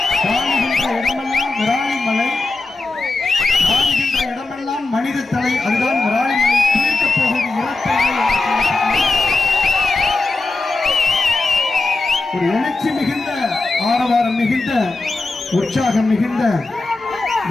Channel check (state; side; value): quieter; right; 3.4 dB